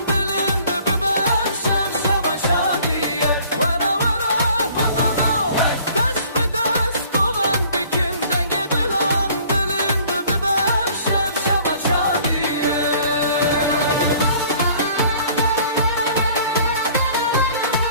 dilin bibem şev şevaşa diye Vara vara halano dest be dest goven bikin denge dilan dilin bibem şev şevaşa diye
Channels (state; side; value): inverted; both; correlation -0.53